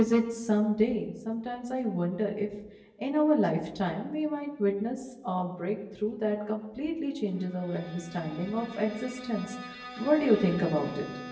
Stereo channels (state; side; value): identical; both; correlation 1.00